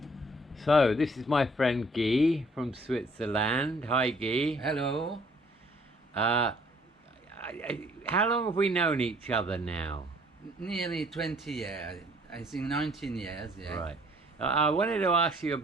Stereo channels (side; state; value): both; normal; correlation 0.60